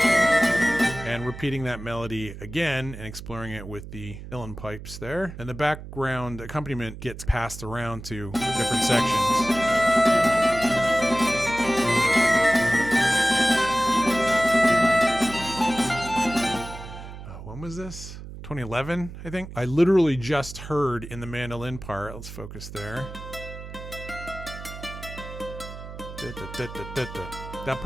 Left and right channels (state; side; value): noise; right; hum, 12 dB below the sound